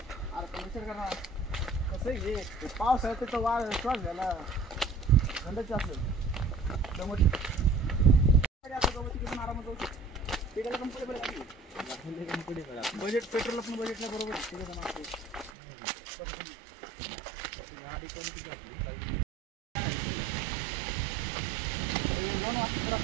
पाऊस आहे तर वाढ श्वास झाला थंडच असेल बजेट पेट्रोल पण बजेटला बरोबर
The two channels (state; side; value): drops out; left; at 15.5 s